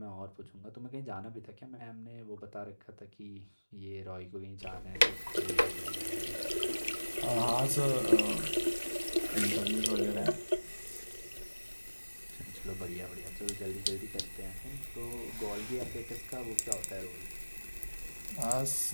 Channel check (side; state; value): both; inverted; correlation -1.00